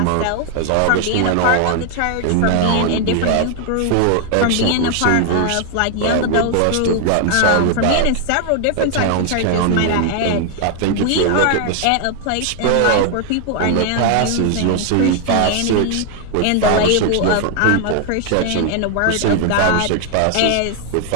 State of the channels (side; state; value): both; different; correlation 0.00